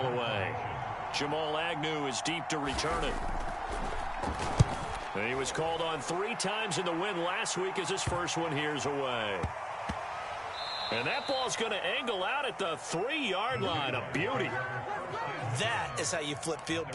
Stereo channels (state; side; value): identical; both; correlation 1.00